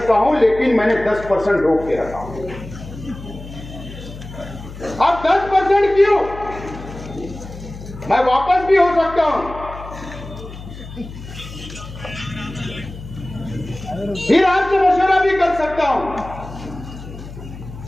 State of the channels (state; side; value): noise; left; hum, 13 dB below the sound